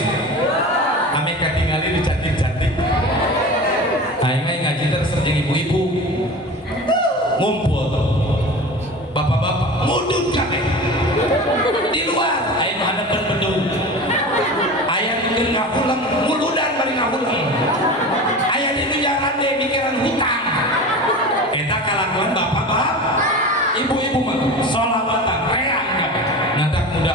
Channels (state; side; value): normal; both; correlation 0.33